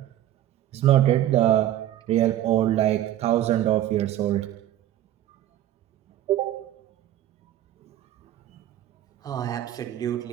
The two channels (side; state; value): left; quieter; 12.7 dB